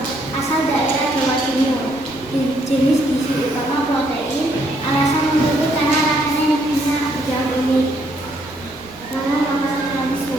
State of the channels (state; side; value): noise; right; rumble, 25 dB below the sound